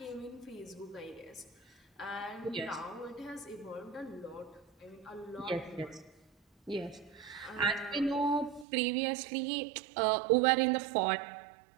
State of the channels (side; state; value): left; drops out; at 8.7 s